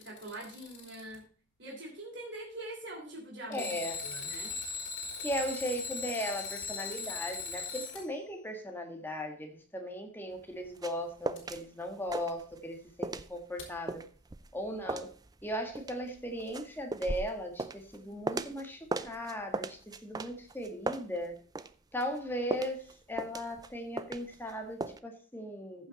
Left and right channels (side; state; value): both; normal; correlation 0.42